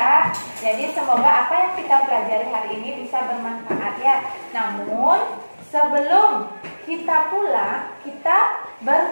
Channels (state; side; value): inverted; both; correlation -1.00